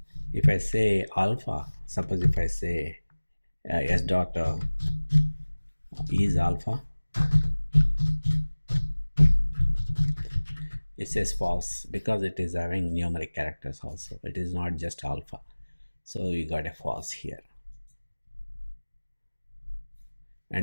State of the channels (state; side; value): inverted; both; correlation -1.00